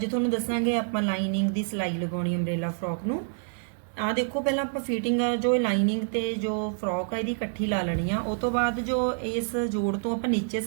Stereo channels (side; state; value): left; silent; 59 dB below the other